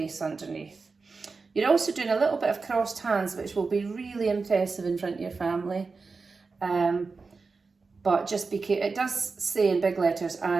underneath. You're also doing a little bit of crossed hands, which will be really impressive in front of your family. But just be careful, it does say in big letters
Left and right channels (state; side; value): quieter; left; 4.4 dB